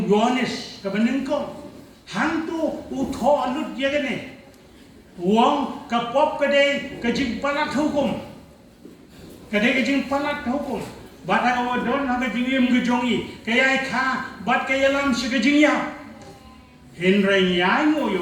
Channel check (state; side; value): identical; both; correlation 1.00